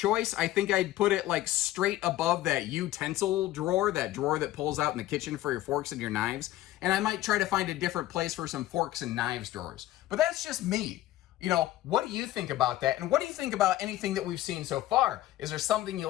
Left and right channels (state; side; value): quieter; right; 15.1 dB